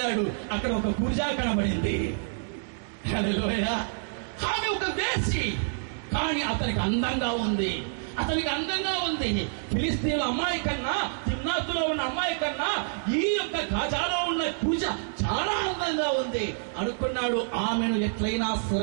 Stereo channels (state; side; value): silent; left; digital silence